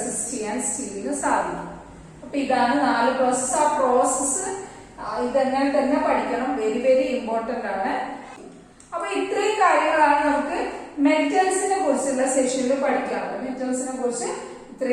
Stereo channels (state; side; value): identical; both; correlation 1.00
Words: ചെയ്യാൻ സ്റ്റീലിന് സാധിക്കും. അപ്പൊ ഇതാണ് 4 പ്രോസസ്. ആ പ്രോസസ് ഇതെങ്ങനെ തന്നെ പഠിക്കണം, വെരി വെരി ഇമ്പോർട്ടന്റ് ആണ്. അപ്പൊ ഇത്രയും കാര്യങ്ങളാണ് നമുക്ക് മെറ്റൽസിനെ കുറിച്ചുള്ള സെഷനിൽ പഠിക്കാനുള്ളത്. മെറ്റൽസിനെ കുറിച്ച്